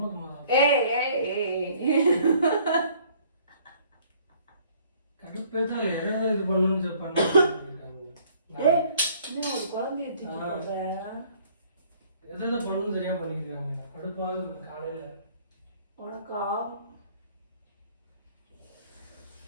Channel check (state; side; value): inverted; both; correlation -0.59